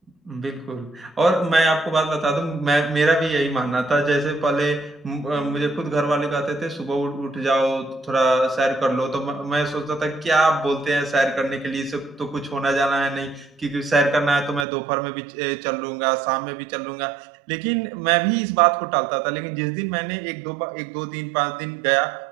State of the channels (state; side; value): drops out; left; at 14.7 s